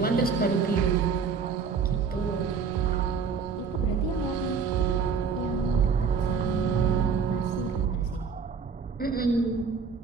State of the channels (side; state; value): left; quieter; 5.8 dB